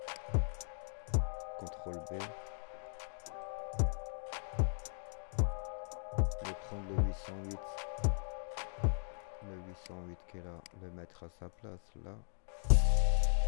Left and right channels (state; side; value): silent; right; digital silence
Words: CTRL B. Et prendre le 808. Le 808 qui est là, le mettre à sa place là.